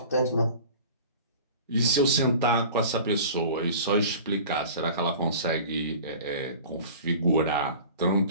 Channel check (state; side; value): inverted; both; correlation -0.41